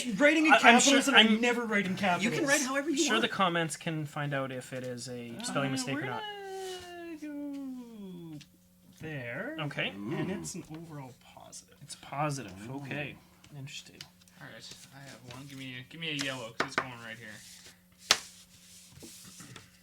writing in I'm capitals, sure- and I I'm- never write in capitals. You can write however you Sure, want. the comments can find out if it is a spelling mistake we're or not. gonna go there. Okay. And it's an overall positive. It's positive. Okay. Interesting. All right, I have one. Give me a yellow because it's going right here.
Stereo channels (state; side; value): identical; both; correlation 1.00